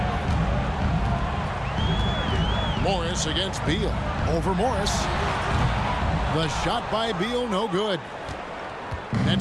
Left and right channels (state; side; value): identical; both; correlation 1.00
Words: Morris against Beal. Over Morris. The shot by Beal, no good.